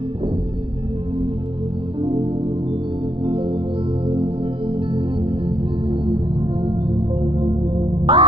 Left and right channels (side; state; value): left; late; 0.25 ms